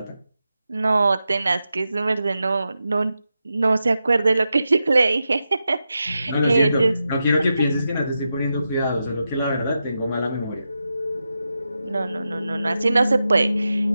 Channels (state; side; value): inverted; both; correlation -0.89